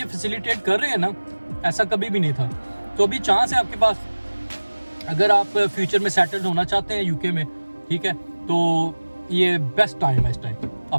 फैसिलिटेट कर रहे हैं ना, ऐसा कभी भी नहीं था। तो अभी चांस है आपके पास, अगर आप फ्यूचर में सेटल्ड होना चाहते हैं यूके में, ठीक है, तो ये बेस्ट टाइम है इस टाइम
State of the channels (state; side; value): inverted; both; correlation -1.00